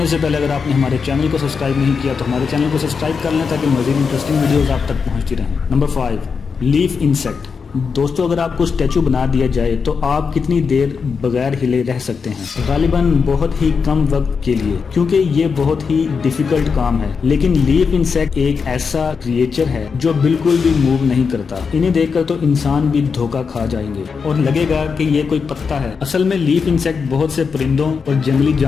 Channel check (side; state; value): right; quieter; 5.5 dB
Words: سے پہلے اگر آپ نے ہمارے چینل کو سبسکرائب نہیں کیا تو ہمارے چینل کو سبسکرائب کر لیں تاکہ مزید انٹرسٹنگ ویڈیوز آپ تک پہنچتی رہیں۔ Number 5، leaf insect. دوستو، اگر آپ کو اسٹیچو بنا دیا جائے تو آپ کتنی دیر بغیر ہلے رہ سکتے ہیں؟ غالباً بہت ہی کم وقت کے لیے، کیونکہ یہ بہت ہی ڈیفیکلٹ کام ہے۔ لیکن لیف انسیکٹ ایک ایسا کریچر ہے جو بالکل بھی موو نہیں کرتا۔ انہیں دیکھ کر تو انسان بھی دھوکہ کھا جائیں گے اور لگے گا کہ یہ کوئی پتا ہے۔ اصل میں لیف انسیکٹ بہت سے پرندوں اور جنگلی